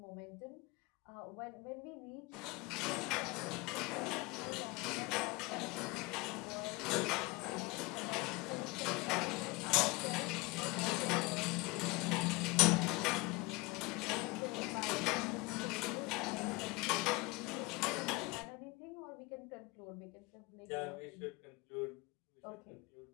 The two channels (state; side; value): quieter; right; 24.5 dB